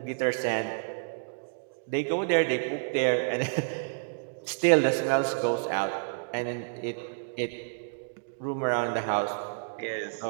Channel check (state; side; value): silent; left; digital silence